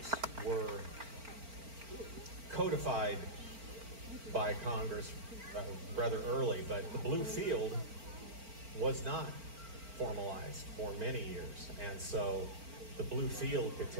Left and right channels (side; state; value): left; late; 4.4 ms